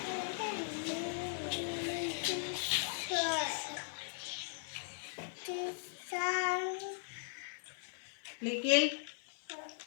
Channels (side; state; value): right; silent; 52 dB below the other